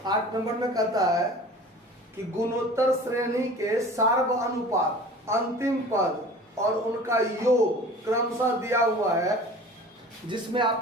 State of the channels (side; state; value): both; normal; correlation 0.41